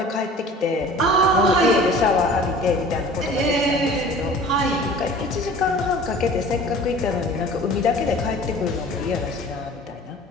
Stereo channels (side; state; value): both; normal; correlation 0.44